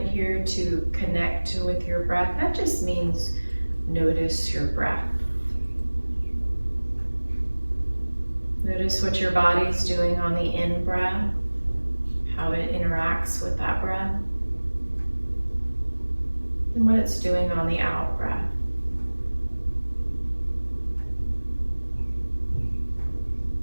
here to connect with your breath. That just means notice your breath. Notice what your body's doing on the in-breath, how it interacts with that breath, and what it's doing on the out-breath.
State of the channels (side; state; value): both; inverted; correlation -1.00